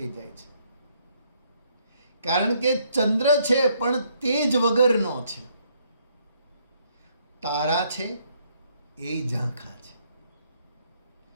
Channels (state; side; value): inverted; both; correlation -0.69